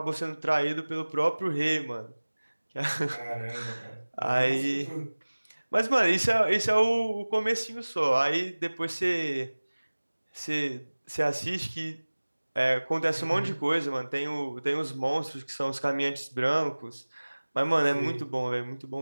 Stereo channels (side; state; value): both; inverted; correlation -1.00